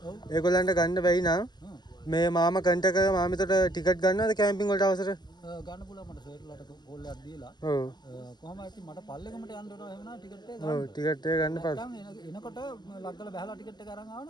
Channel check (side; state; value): right; late; 0.21 ms